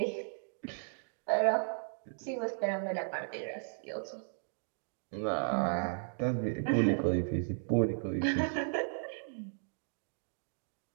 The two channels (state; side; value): silent; left; digital silence